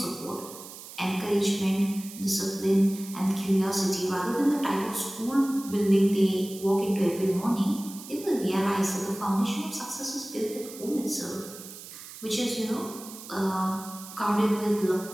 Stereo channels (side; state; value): right; noise; hiss, 14 dB below the sound